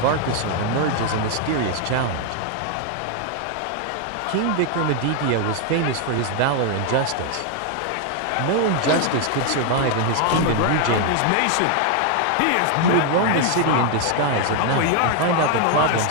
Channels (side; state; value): both; different; correlation 0.01